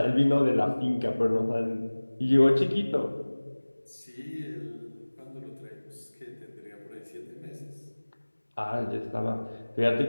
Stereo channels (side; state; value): both; inverted; correlation -1.00